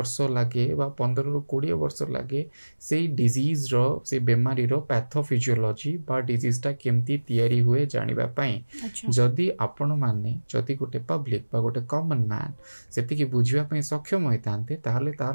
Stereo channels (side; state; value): both; inverted; correlation -1.00